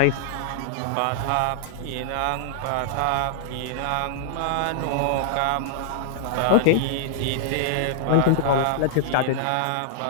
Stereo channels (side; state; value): both; different; correlation -0.01